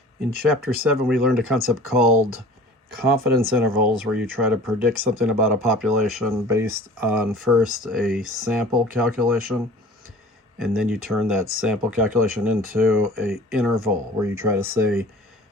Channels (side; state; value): both; normal; correlation 0.43